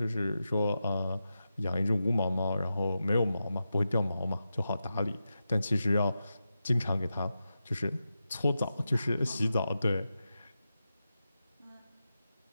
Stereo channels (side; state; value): both; inverted; correlation -0.90